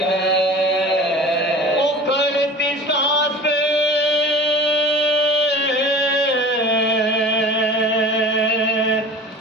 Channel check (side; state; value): both; normal; correlation 0.39